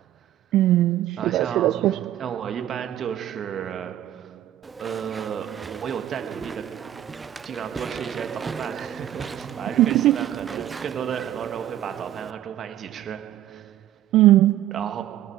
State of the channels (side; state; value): left; quieter; 12.2 dB